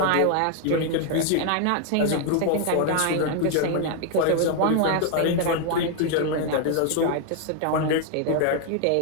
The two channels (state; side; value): different; both; correlation 0.00